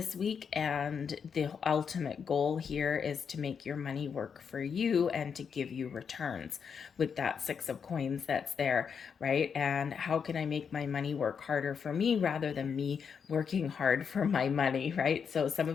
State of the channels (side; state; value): right; quieter; 6.6 dB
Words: week, and the ultimate goal here is to make your money work for you and to give you returns with that Six of Coins that's there, right? And how can I make my money work harder for me rather than me working hard for my money, right? So some